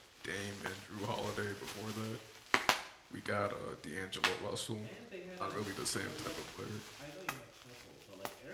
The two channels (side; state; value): both; identical; correlation 1.00